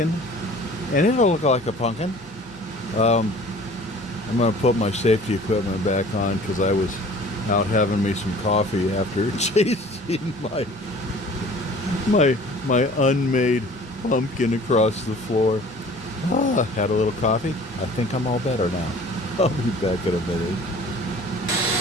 And it'll look like a pumpkin. I'm going to put my safety equipment back on because I was out having me some coffee after chasing my unmade pumpkin across the floor. Had a little coffee. I think I'm all better now. I'll be back in a minute.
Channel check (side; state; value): both; normal; correlation 0.47